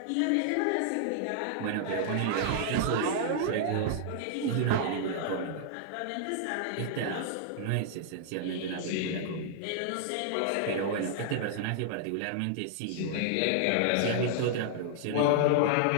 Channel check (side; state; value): both; different; correlation -0.01